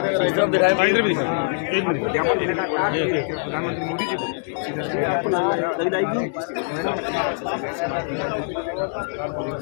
सब दिखाए, इधर भी दिखा एक मिनट ये आपको लग जाएगी।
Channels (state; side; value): silent; right; digital silence